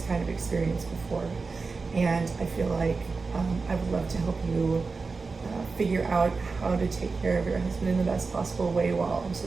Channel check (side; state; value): left; quieter; 4.3 dB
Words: kind of experience before. And I feel like I would love to help you figure out how to take care of your husband in the best possible way while